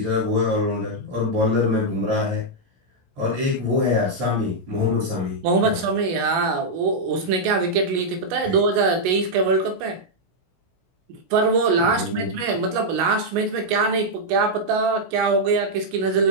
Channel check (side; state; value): left; late; 16 ms